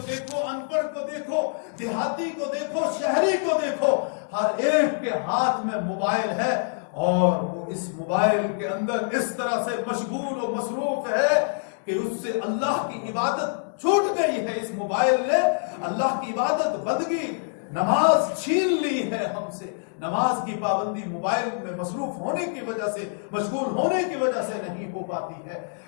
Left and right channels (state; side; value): silent; right; digital silence